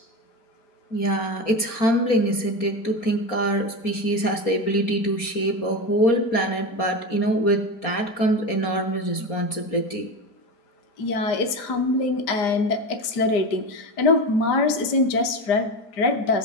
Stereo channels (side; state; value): right; late; 4.3 ms